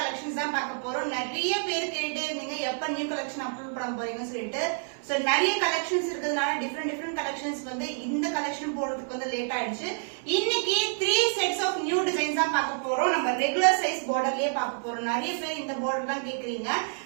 தான் பார்க்க போறோம். நிறைய பேர் கேட்டு இருந்தீங்க எப்ப நியூ கலெக்ஷன் அப்லோட் பண்ண போறீங்கன்னு சொல்லிட்டு. சோ நிறைய கலெக்ஷன்ஸ் இருக்கிறதுனால டிஃபரெண்ட் கலெக்ஷன்ஸ் வந்து இந்த கலெக்ஷன் போறதுக்கு வந்து லேட் ஆயிடுச்சு. இன்னைக்கு 3 செட்ஸ் ஆஃப் நியூ டிசைன்ஸ் தான் பார்க்க போறோம். நம்ம ரெகுலர் சைஸ் பார்டர்லயே பார்க்க போறோம். நிறைய பேர் இந்த பார்டர் தான் கேக்குறீங்க.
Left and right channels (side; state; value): left; silent; 59 dB below the other